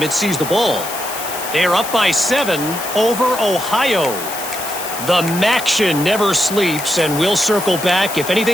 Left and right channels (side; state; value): left; noise; hiss, 9 dB below the sound